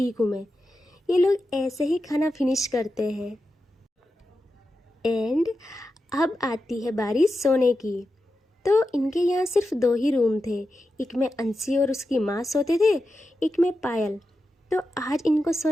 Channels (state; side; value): normal; both; correlation 0.90